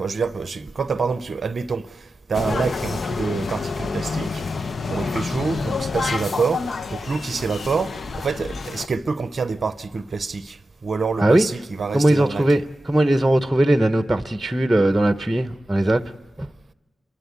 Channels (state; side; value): normal; both; correlation 0.93